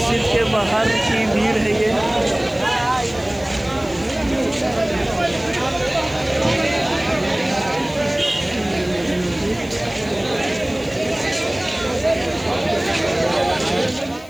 के बाहर की भीड़ है ये।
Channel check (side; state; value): left; noise; hiss, 23 dB below the sound